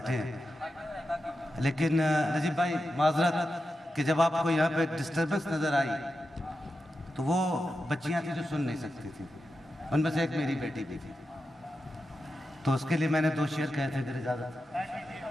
ہیں، لیکن نجیب بھائی معذرت کہ جب آپ کو یہاں پہ ڈسٹربنس نظر آئی تو وہ بچیاں تھیں جو سن نہیں سکتی تھیں، ان میں سے ایک میری بیٹی بھی تھی، تو اس کے لیے میں نے 2 شعر کہے تھے اگر اجازت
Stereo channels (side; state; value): both; normal; correlation 0.90